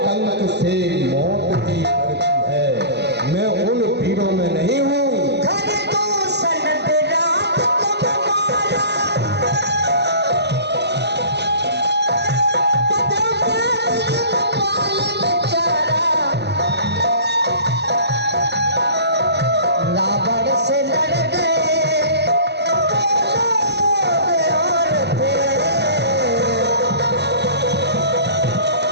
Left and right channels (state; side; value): late; left; 0.49 ms